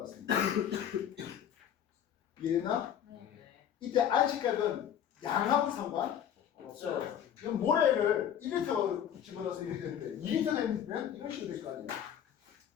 같습니다. 이해됐나? 네. 이때 안식각은 양하고 상관 없어요. 이건 모래를 1리터 집어넣어서 이렇게 되는데 2리터 되면 이런 식으로 될 거 아니에요.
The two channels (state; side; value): quieter; right; 9.4 dB